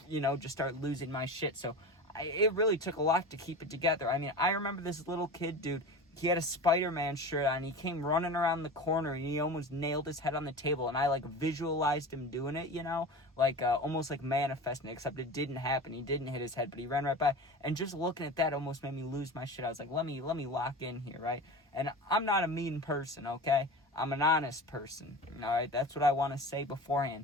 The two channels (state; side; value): normal; both; correlation 0.31